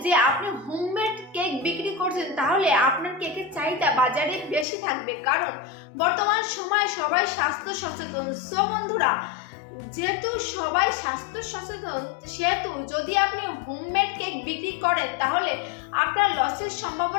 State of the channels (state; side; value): drops out; right; at 4.7 s